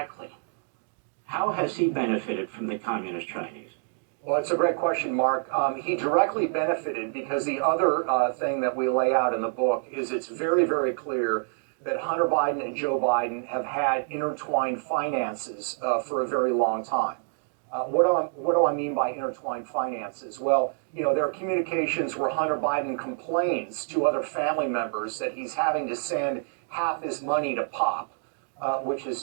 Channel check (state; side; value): silent; left; digital silence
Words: how has he benefited from the communist Chinese? Well, it's a great question, Mark. He directly benefited because the other thing that we lay out in the book is it's very, very clear that Hunter Biden and Joe Biden have had intertwined finances for a very long time. What do I mean by intertwined finances? Well, there are communications where Hunter Biden complains to other family members that he's having to send half his money to Pop, which is